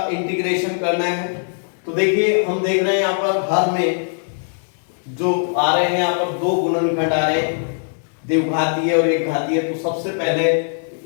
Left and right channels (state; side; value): silent; right; 66 dB below the other